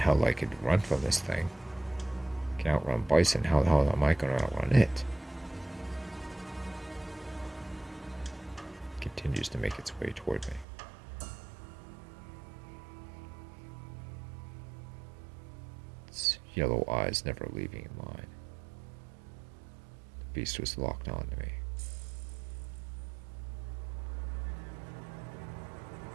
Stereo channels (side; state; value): left; drops out; at 10.7 s